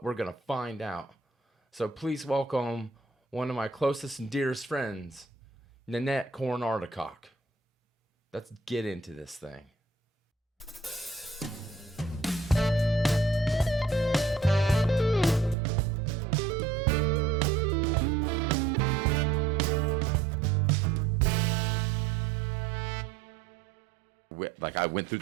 we're going to find out. So please welcome one of my closest and dearest friends, Nanette Ardakoc. Let's get into this thing. Like I went through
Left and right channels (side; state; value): left; drops out; at 15.6 s